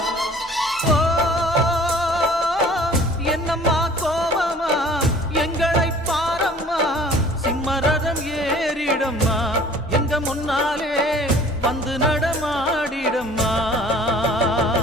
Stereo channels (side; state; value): both; normal; correlation 0.50